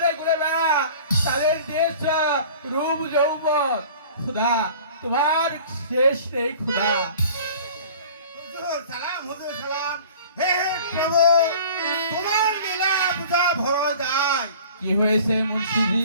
ঘুরে বেড়া, তাদের দেশ রূপ যৌবন, খুদা তোমার শেষ নেই খুদা। হুজুর সালাম। হে হে প্রভু, তোমার লীলা বুঝা ভয় যায়। কি হয়েছে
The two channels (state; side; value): inverted; both; correlation -0.45